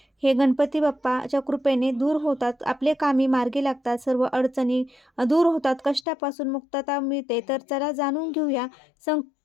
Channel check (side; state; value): right; drops out; at 6.1 s